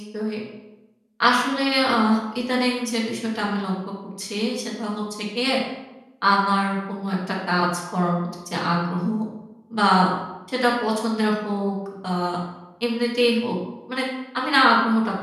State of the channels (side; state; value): both; identical; correlation 1.00